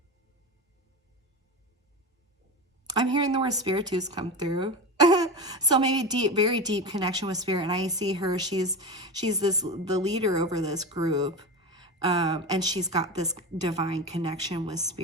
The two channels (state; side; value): normal; both; correlation 0.23